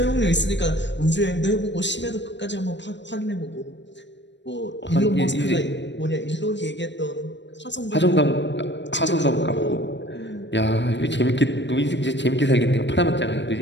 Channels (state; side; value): late; right; 0.52 ms